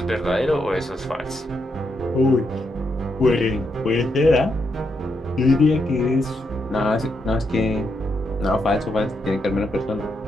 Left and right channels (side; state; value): both; normal; correlation 0.81